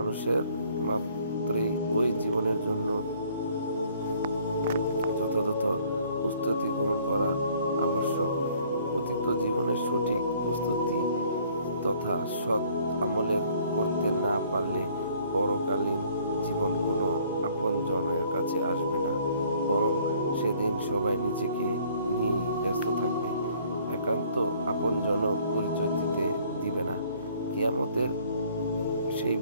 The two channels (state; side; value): inverted; both; correlation -0.59